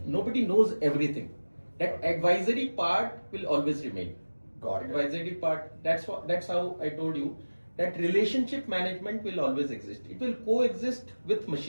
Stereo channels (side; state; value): both; inverted; correlation -1.00